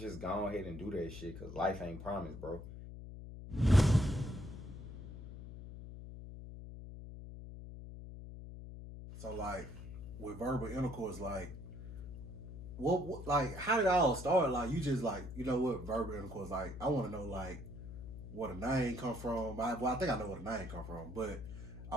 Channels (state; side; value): noise; left; hum, 11 dB below the sound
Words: go ahead and do that shit, cause life ain't promised, bro. So like with verbal intercourse, like what like how did it all start? Like you just like, you know what, verbal intercourse, like I wanna know like where the name come from. I think I know where the name come from, but